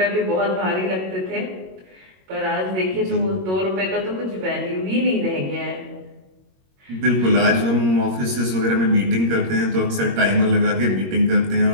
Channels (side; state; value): left; late; 21 ms